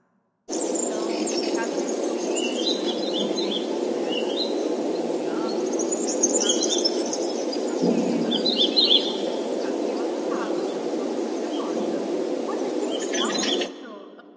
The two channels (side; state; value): both; identical; correlation 1.00